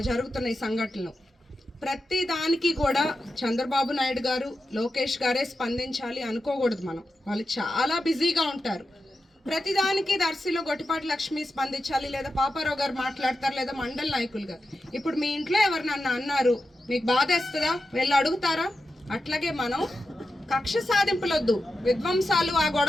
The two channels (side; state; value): both; normal; correlation 0.90